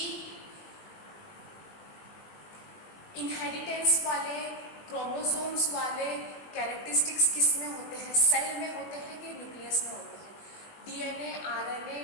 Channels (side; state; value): right; late; 20 ms